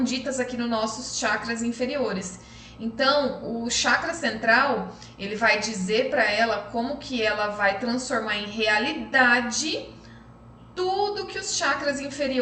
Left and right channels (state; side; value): identical; both; correlation 1.00